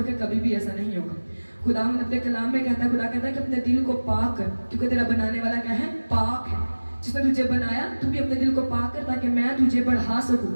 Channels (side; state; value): both; inverted; correlation -1.00